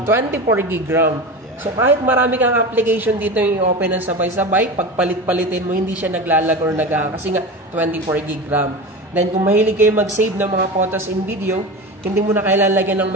24GB RAM. Yeah. So, kahit marami kang application dito yung open ng sabay-sabay, pag palit-palitin mo, hindi siya naglalag or kasi nga 24GB RAM. Then, kung mahilig kayo mag-save ng mga photos and video, hindi mo na kailangan lagyan ng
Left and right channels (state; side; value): normal; both; correlation 0.27